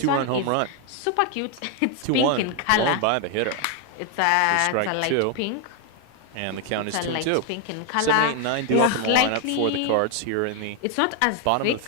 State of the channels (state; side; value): different; both; correlation 0.01